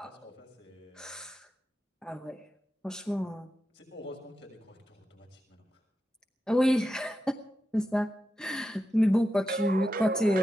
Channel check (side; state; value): both; normal; correlation 0.89